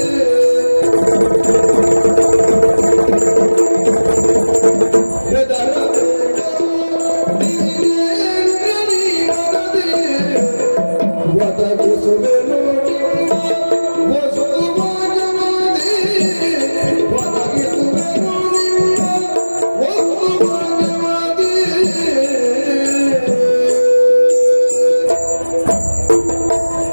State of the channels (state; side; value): inverted; both; correlation -1.00